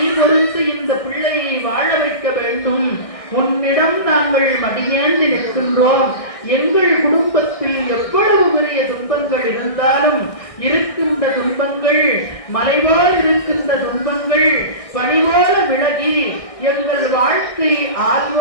பொறுத்து இந்த பிள்ளையை வாழ வைக்க வேண்டும். உன்னிடம் நாங்கள் மடியேந்தி நிற்கின்றோம். எங்கள் குடும்பத்தில் எவ்வளவு பெரிய துன்பங்கள் இருந்தாலும், இருக்கின்ற துன்பங்கள் மலைபோல் இருக்கின்ற துன்பங்கள் பனிபோல விலகி எங்கள் வாழ்க்கை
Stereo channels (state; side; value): late; right; 1.6 ms